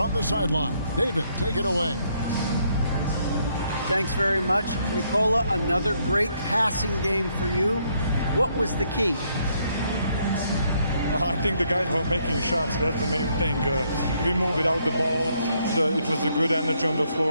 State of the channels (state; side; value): inverted; both; correlation -0.72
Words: the sideline. David, take it away. Thanks very much. Nikola, another great passing game for you. What was the key? I think the guys were making shots. That's the main thing. We moved without the ball. It was a good energy on the